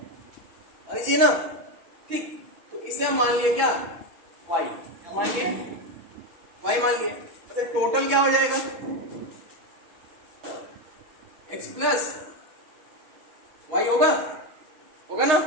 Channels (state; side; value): late; left; 6.2 ms